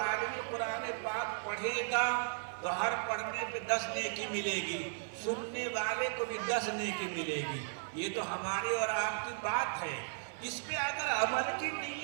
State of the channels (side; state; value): left; silent; digital silence